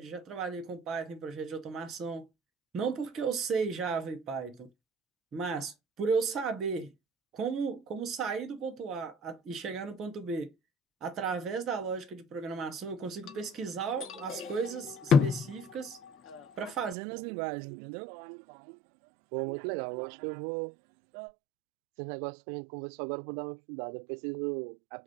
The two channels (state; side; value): drops out; left; at 16.9 s